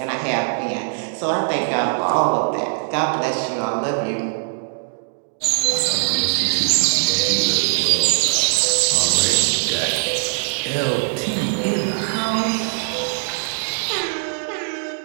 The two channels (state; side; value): silent; left; digital silence